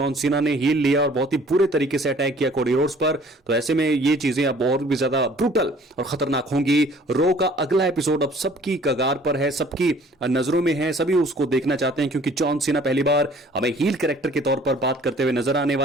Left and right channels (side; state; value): both; normal; correlation 0.54